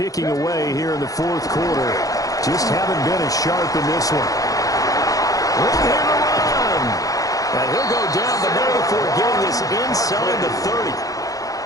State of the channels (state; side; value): late; right; 0.17 ms